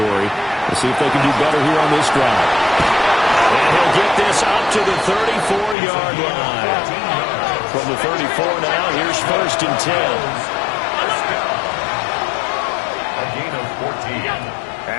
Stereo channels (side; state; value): right; drops out; at 5.8 s